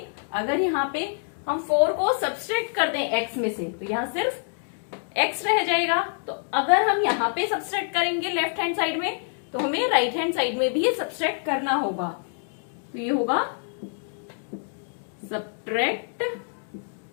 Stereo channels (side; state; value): right; silent; digital silence